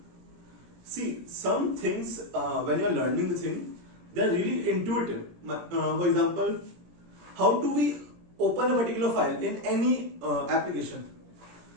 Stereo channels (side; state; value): left; late; 17 ms